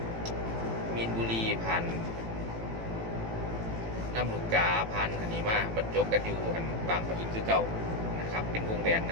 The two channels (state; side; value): late; left; 18 ms